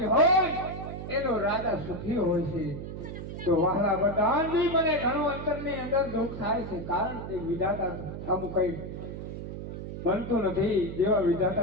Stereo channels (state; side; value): noise; right; hum, 8 dB below the sound